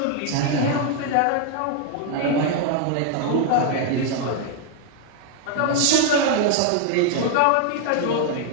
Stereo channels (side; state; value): both; different; correlation 0.00